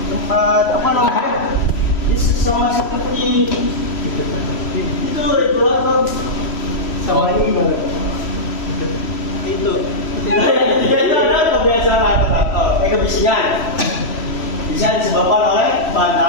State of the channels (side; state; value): right; late; 3.1 ms